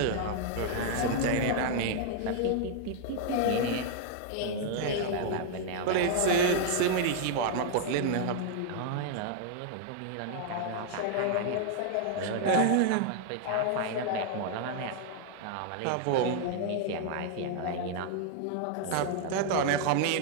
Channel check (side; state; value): both; different; correlation 0.00